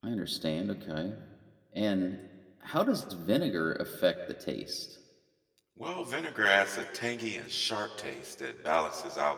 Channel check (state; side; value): identical; both; correlation 1.00